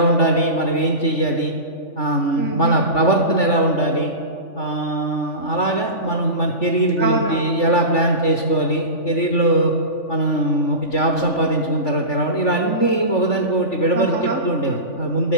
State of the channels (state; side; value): late; right; 3.5 ms